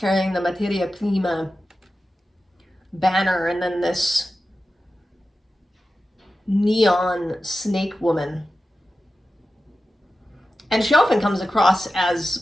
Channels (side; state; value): both; normal; correlation 0.93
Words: the Materia Prima banner, and then this neon snake woman. And she often comes across as